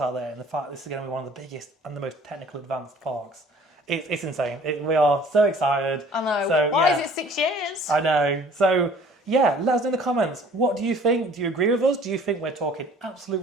there, and the fact this is going to be one of the biggest and the most technical advanced parks. It's insane. We are so excited. I know. So, Why yeah. is it 6 years? I know. So, yeah, let us know in the comments. What do you think? Do you agree with us? Do you think we're talking absolute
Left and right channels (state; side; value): normal; both; correlation 0.51